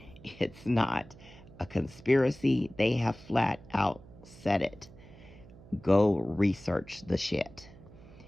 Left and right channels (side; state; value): right; noise; hum, 20 dB below the sound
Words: It's not a conspiracy. They have flat out said it. Go research the shit.